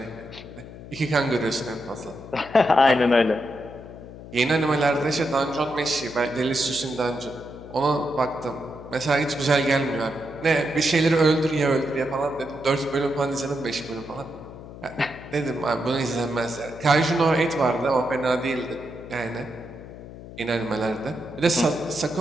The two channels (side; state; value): left; noise; hum, 15 dB below the sound